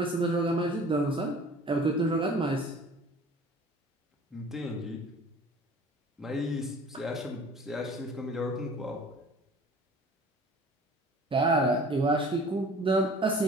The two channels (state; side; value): normal; both; correlation 0.46